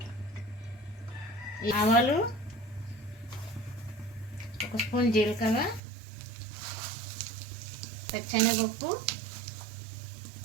ఆవాలు, 1 స్పూన్ జీలకర్ర, పచ్చెనగపప్పు,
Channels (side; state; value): left; drops out; at 5.8 s